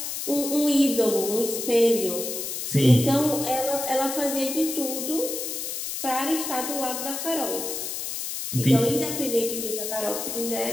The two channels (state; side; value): noise; left; hiss, 5 dB below the sound